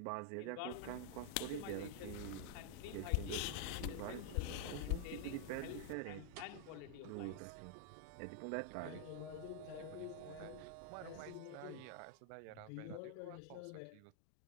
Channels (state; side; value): different; both; correlation 0.00